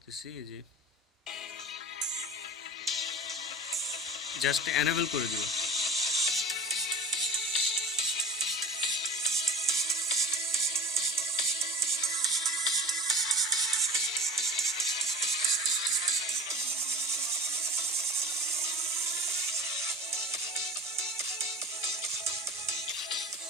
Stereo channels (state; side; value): normal; both; correlation 0.36